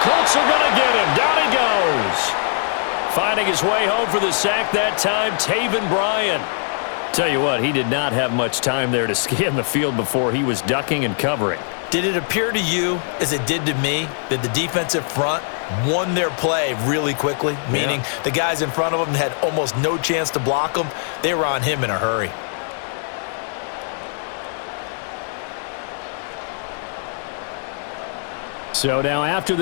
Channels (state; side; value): silent; right; digital silence